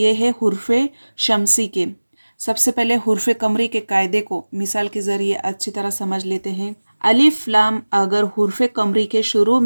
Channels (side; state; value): both; inverted; correlation -1.00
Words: है हुर्फ शमसी के। सबसे पहले हुर्फ कमरी के कायदे को मिसाल के ज़रिए अच्छी तरह समझ लेते हैं। अलिफ लाम अगर हुर्फ कमरी के शुरू